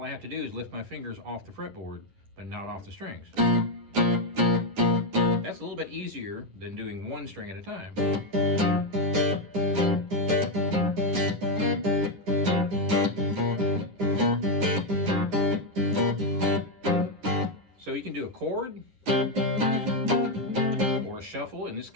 I have to do is lift my fingers off the fretboard, but not off the strings. That's a little bit easier than doing 1 string at a time. So you can do a chord or a shuffle. In this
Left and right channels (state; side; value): late; left; 10 ms